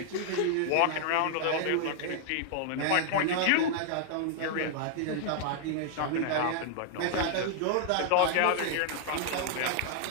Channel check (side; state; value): both; different; correlation -0.01